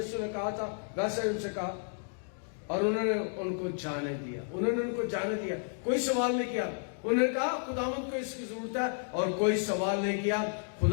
نے کہا تھا ویسا ہی ان سے کہا, اور انہوں نے ان کو جانے دیا. انہوں نے ان کو جانے دیا, کوئی سوال نہیں کیا. انہوں نے کہا خداوند کو اس کی ضرورت ہے, اور کوئی سوال نہیں کیا.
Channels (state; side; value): silent; right; 56 dB below the other